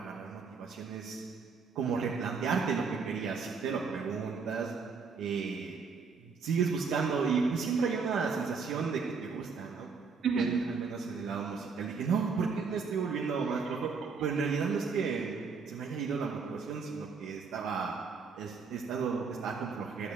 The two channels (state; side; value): quieter; left; 5.2 dB